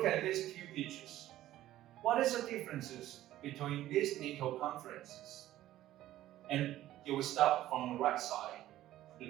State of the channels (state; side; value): quieter; left; 14.1 dB